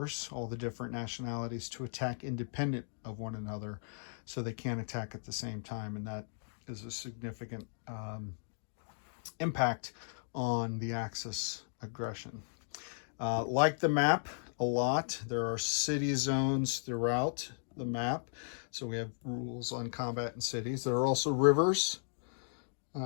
all the different nationalities, to attack independent of one another, so they can't attack at the same time. And that is a significant impact on the Axis aggression. Like the map a lot, there are city zones throughout the map. So we have rules on combat in cities. There are also rivers,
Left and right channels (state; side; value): silent; right; digital silence